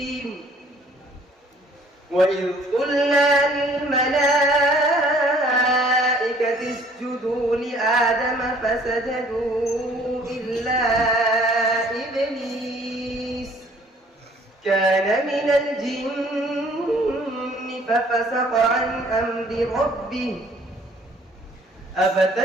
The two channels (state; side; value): normal; both; correlation 0.58